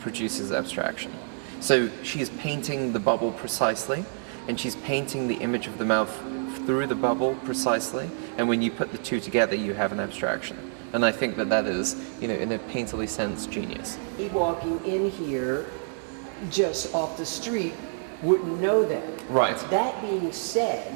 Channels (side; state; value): left; silent; 60 dB below the other